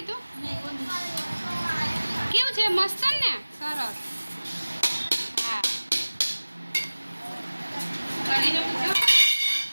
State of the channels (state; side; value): inverted; both; correlation -1.00